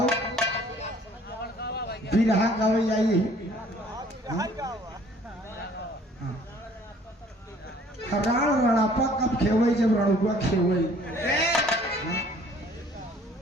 बिरहा गावे जाइए। राण रणापा कब खेवे, जब रणुआ खेवे।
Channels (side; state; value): both; normal; correlation 0.56